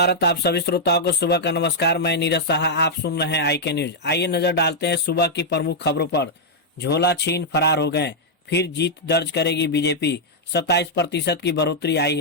आप सभी श्रोताओं को सुबह का नमस्कार। मैं नीरज साहा, आप सुन रहे हैं IK न्यूज। आइए नजर डालते हैं सुबह की प्रमुख खबरों पर। झोला छीन फरार हो गए, फिर जीत दर्ज करेगी बीजेपी। 27% की बढ़ोतरी आई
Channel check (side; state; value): both; normal; correlation -0.05